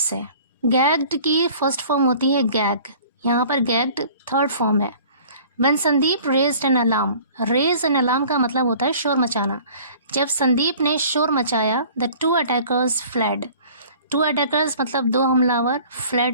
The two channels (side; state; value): both; inverted; correlation -0.48